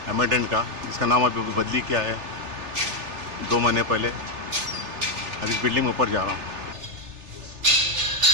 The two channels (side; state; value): left; late; 3.3 ms